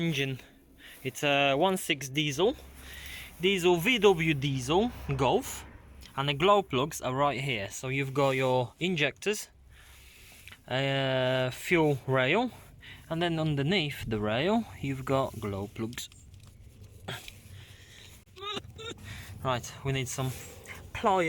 It's a 1.6 diesel VW diesel Golf, and the glow plugs are right here. So you've got your injectors, fuel rail, and then underneath the rail you've got glow plugs. Right, we need some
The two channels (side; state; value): both; identical; correlation 1.00